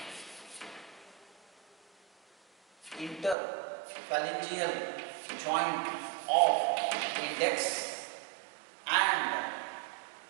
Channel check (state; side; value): drops out; left; at 3.4 s